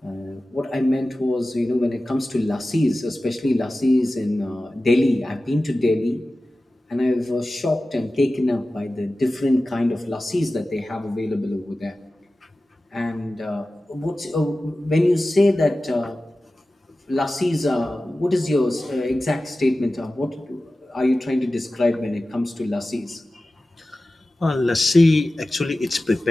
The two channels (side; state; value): both; normal; correlation 0.95